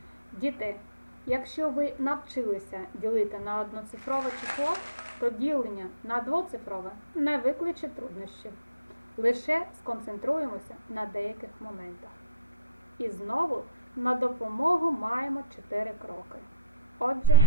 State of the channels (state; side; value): inverted; both; correlation -0.60